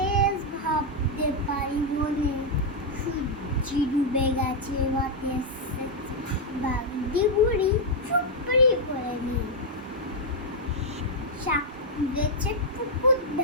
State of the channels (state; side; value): normal; both; correlation -0.02